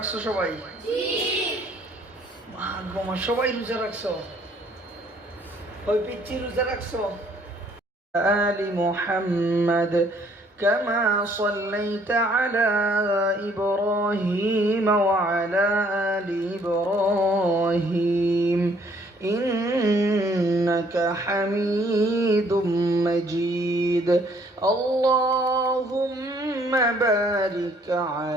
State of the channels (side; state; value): both; normal; correlation 0.63